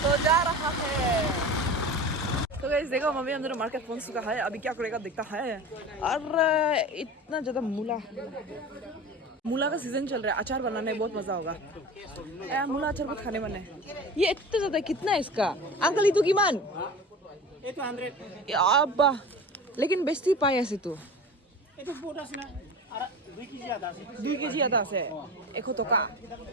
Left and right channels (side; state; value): both; normal; correlation 0.34